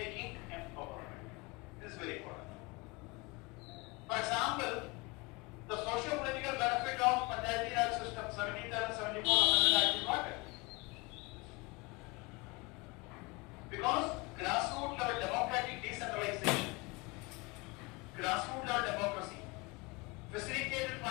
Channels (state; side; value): quieter; right; 26.2 dB